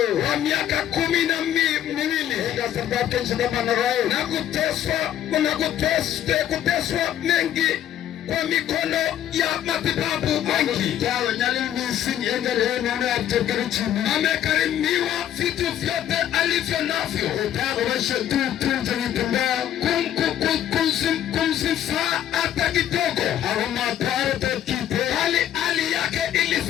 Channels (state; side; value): quieter; right; 11.1 dB